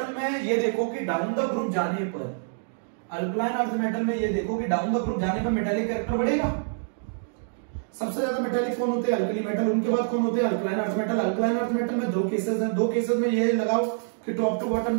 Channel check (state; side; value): silent; left; digital silence